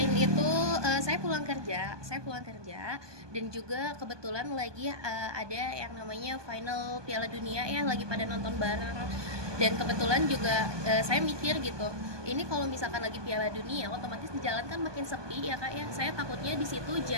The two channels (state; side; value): late; left; 1.2 ms